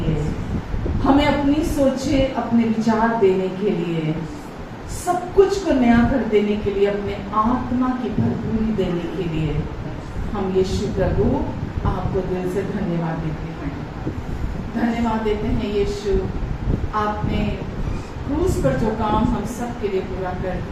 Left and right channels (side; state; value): both; identical; correlation 1.00